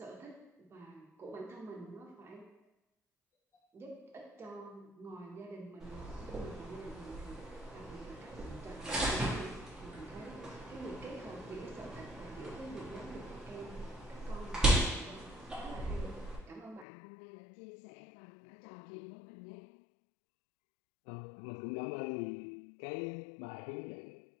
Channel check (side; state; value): right; drops out; at 16.9 s